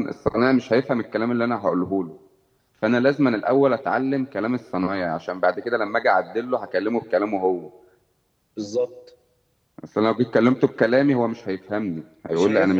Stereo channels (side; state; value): both; identical; correlation 1.00